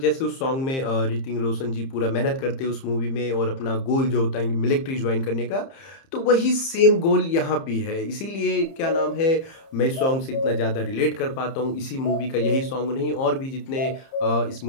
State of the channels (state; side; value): late; right; 30 ms